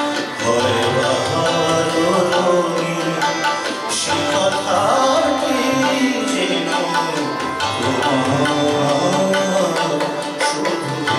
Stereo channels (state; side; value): identical; both; correlation 1.00